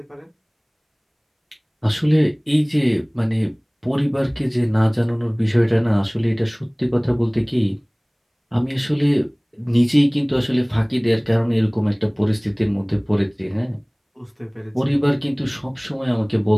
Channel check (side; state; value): both; identical; correlation 1.00